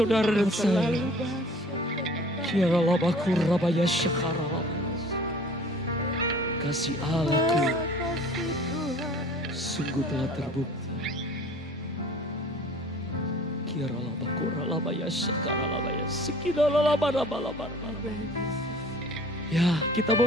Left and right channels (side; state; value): both; normal; correlation 0.48